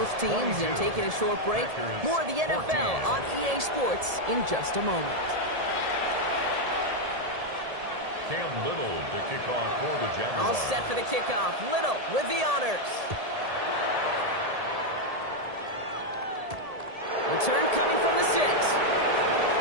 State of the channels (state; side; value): late; left; 1.7 ms